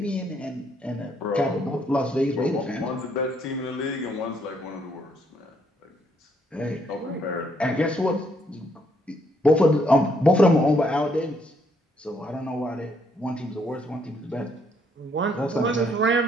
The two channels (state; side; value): normal; both; correlation 0.71